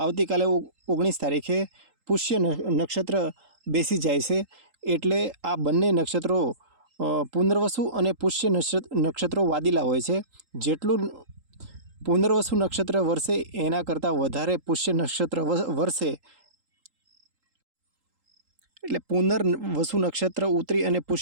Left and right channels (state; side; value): late; left; 3.8 ms